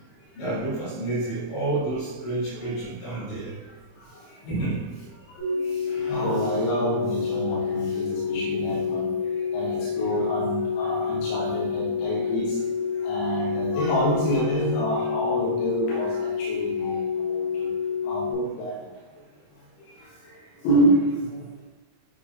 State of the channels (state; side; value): late; right; 26 ms